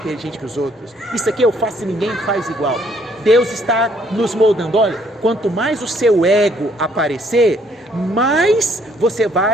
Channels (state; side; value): normal; both; correlation 0.65